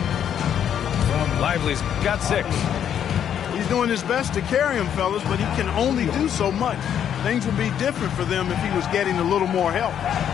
Lively's got 6. He's doing his best to carry him, fellas, but he can only do so much. Things would be different for them if he was getting a little more help.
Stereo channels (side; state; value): right; quieter; 9.2 dB